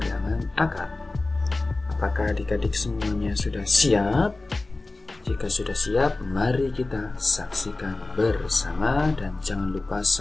akar. Apakah adik-adik semuanya sudah siap? Jika sudah siap, mari kita saksikan bersama dan jangan lupa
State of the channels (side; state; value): right; quieter; 3.2 dB